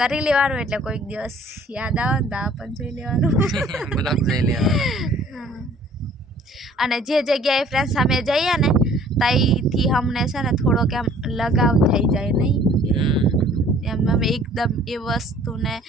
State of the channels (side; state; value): both; normal; correlation 0.54